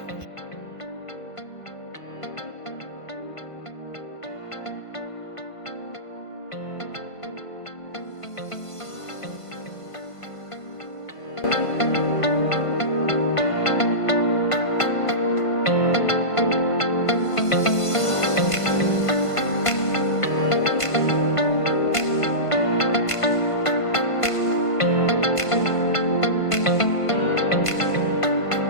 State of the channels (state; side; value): late; right; 1.5 ms